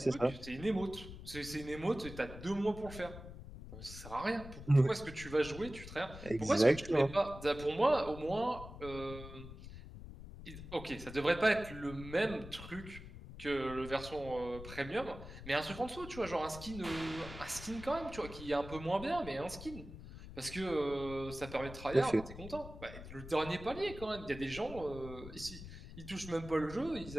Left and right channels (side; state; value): left; noise; rumble, 13 dB below the sound